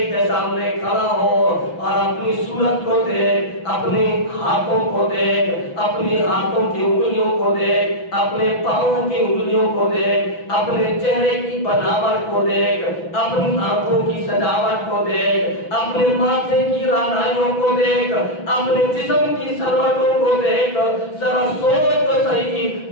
کے سامنے کھڑا ہو اور اپنی صورت کو دیکھ، اپنے ہاتھوں کو دیکھ، اپنی ہاتھوں کی انگلیوں کو دیکھ، اپنے پاؤں کی انگلیوں کو دیکھ، اپنے چہرے کی بناوٹ کو دیکھ، اپنی آنکھوں کی سجاوٹ کو دیکھ، اپنے ماتھے کی رانائیوں کو دیکھ، اپنے جسم کی سلوٹوں کو دیکھ، ذرا سوچ تو صحیح،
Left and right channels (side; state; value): right; late; 6.0 ms